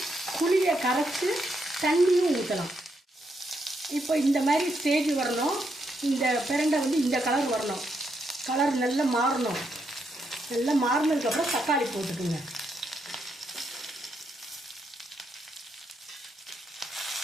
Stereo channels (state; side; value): normal; both; correlation 0.79